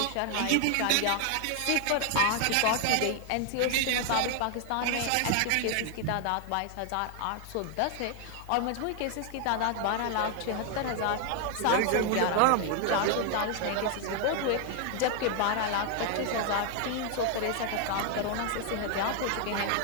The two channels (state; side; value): different; both; correlation 0.00